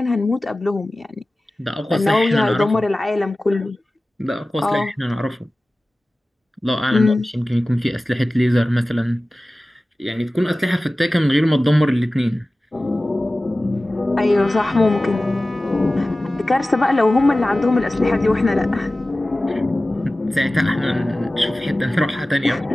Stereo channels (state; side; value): normal; both; correlation 0.96